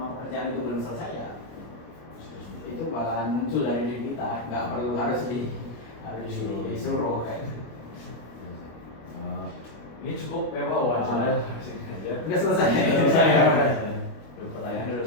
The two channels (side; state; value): right; late; 25 ms